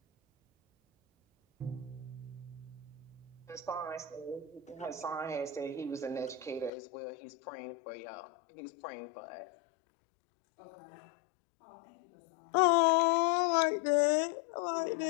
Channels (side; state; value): right; drops out; at 6.7 s